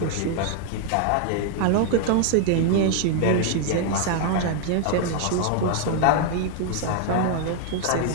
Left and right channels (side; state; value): both; different; correlation 0.00